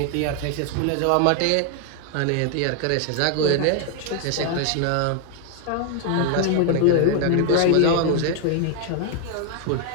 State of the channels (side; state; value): both; different; correlation 0.01